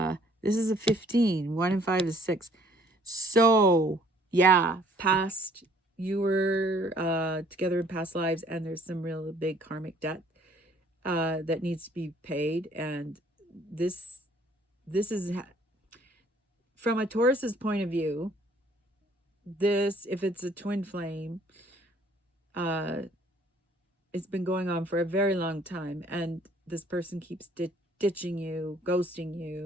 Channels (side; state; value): both; normal; correlation 0.59